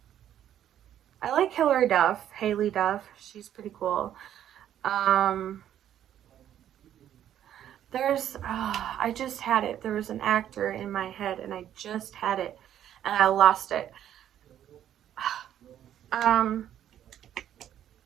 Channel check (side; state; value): left; quieter; 10.8 dB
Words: I like Hilary Duff, Haley Duff. She's pretty cool. Um, I just had it. There was an actor in my head, and I just had it, and I lost it. Um,